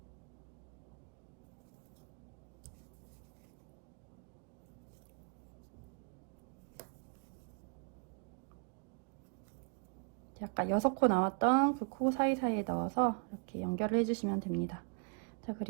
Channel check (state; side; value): quieter; left; 39.8 dB